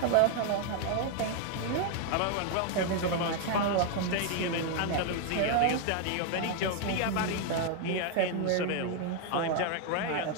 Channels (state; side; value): different; both; correlation 0.01